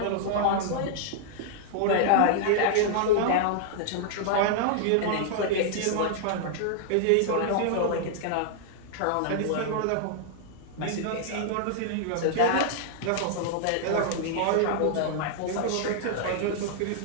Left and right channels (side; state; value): both; different; correlation -0.01